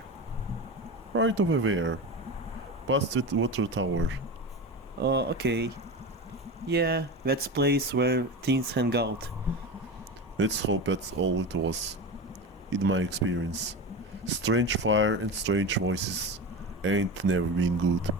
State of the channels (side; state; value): both; normal; correlation 0.25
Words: Right over there. Past the water tower. Oh, okay. Yeah, that's place where teens hang out. Let's hope that's all it was. In my experience. Strange fire and strange voices ain't never been good.